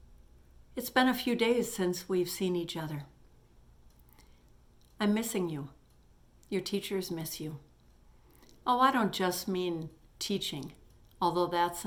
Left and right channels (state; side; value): identical; both; correlation 1.00